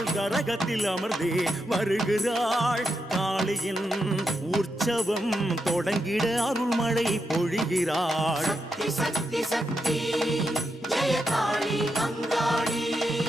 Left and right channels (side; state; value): both; normal; correlation 0.84